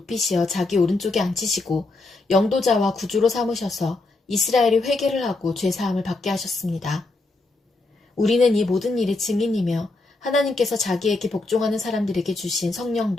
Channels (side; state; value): right; quieter; 3.2 dB